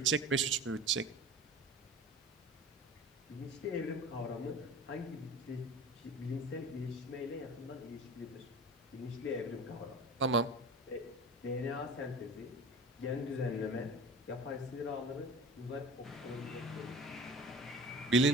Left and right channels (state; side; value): normal; both; correlation 0.37